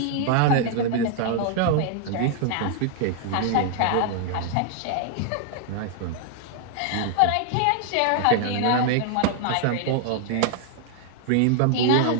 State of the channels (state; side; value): different; both; correlation 0.00